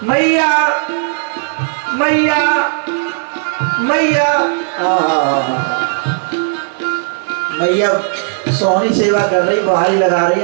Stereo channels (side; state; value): left; silent; digital silence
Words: मैया मैया मैया। मैया सोहनी सेवा कर रही, बहारी लगा रही